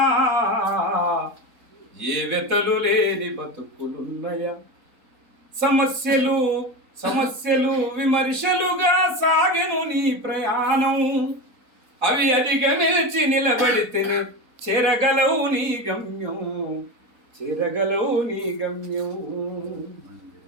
ఏ వెతలు లేని బతుకులున్నయా. సమస్యలు సమస్యలు విమర్శలుగా సాగెను నీ ప్రయాణం, అవి అధిగమించి నిలబడితేనే చేరగలవు నీ గమ్యం, చేరగలవు నీ గమ్యం.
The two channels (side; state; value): left; late; 4.0 ms